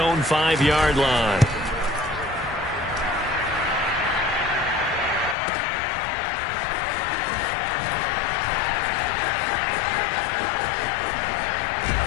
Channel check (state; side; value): drops out; right; at 5.4 s